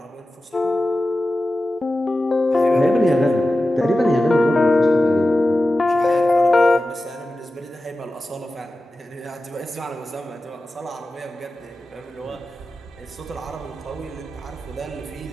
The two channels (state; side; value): normal; both; correlation 0.94